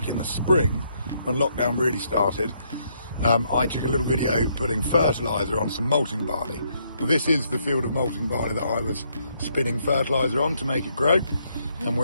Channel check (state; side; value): inverted; both; correlation -0.73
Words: in the spring when lockdown really started, I took a little video putting fertiliser on some malting barley. Well, this is the field of malting barley that I was spinning fertiliser on to make it grow, and